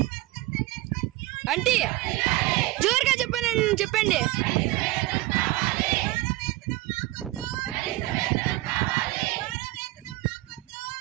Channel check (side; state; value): left; quieter; 18.6 dB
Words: అంటే జోరుగా చెప్పండి.